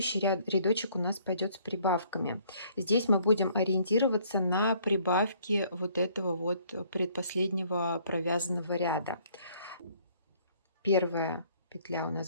рядочек у нас пойдет с прибавками. Здесь мы будем ориентироваться на прибавки вот этого вот предпоследнего провязанного ряда. Первая петля у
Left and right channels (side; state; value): both; inverted; correlation -0.62